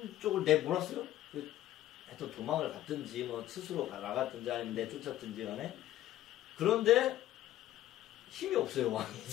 내몰았어요. 하여튼 도망을 갔든지 뭐 스스로 나갔든지 아니면 내쫓았든지 간에 그런데 힘이 없어요. 왕이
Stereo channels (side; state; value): right; quieter; 13.7 dB